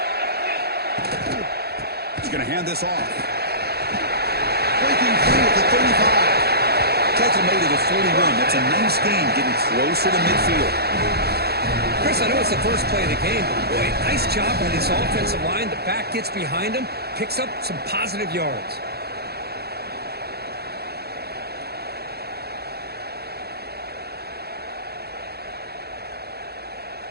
He's going to hand this off. Breaking free at the 35. Tries to make it a 41. That's a nice gain, getting closer to midfield. Chris, I know it's the first play of the game, but boy, nice job by this offensive line. The back gets behind him, picks up some positive yards.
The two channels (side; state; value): left; late; 0.46 ms